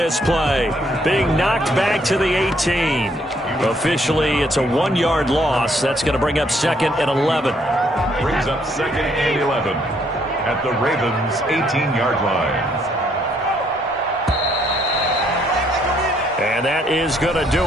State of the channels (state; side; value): normal; both; correlation 0.69